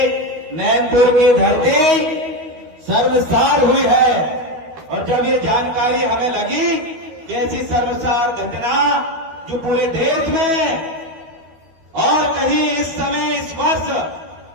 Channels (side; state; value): left; late; 13 ms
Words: नैनपुर की धरती सर्वसार हुई है और जब ये जानकारी हमें लगी कि ऐसी सर्वसार घटना जो पूरे देश में और कहीं इस समय, इस वर्ष